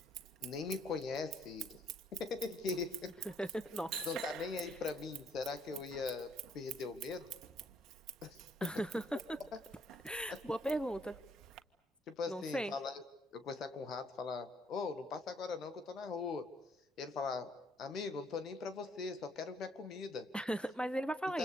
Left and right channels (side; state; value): both; normal; correlation 0.67